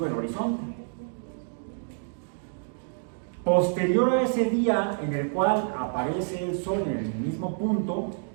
el horizonte. Posterior a ese día en el cual aparece el sol en el mismo punto,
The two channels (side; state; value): left; silent; digital silence